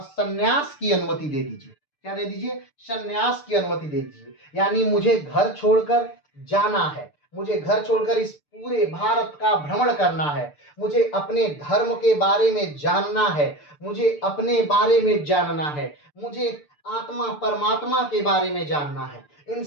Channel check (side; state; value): right; late; 6.7 ms